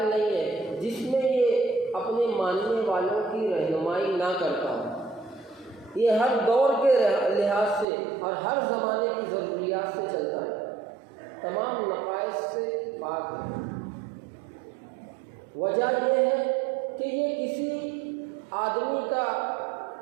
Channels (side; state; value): left; drops out; at 7.9 s